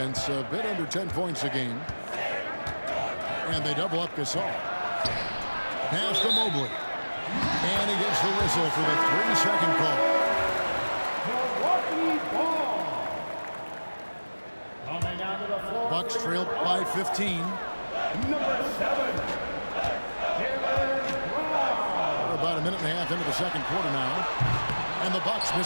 a bit under 10 points a game. And they double up Gasol. Pass to Mobley. And he gets the whistle for the 3-second call. Milwaukee ball. Coming out of Bucks trail by 15. Number 7. We're about a minute and a half into the second quarter now. And the Bucks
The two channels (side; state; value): both; inverted; correlation -1.00